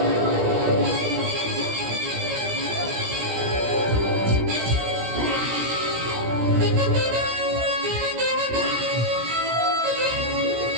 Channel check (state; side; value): late; left; 17 ms